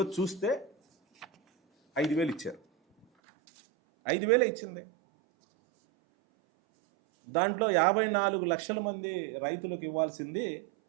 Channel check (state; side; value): drops out; left; at 3.1 s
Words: చూస్తే 5,000 ఇచ్చారు. 5,000 ఇచ్చింది. దాంట్లో 54 లక్షల మంది రైతులకు ఇవ్వాల్సింది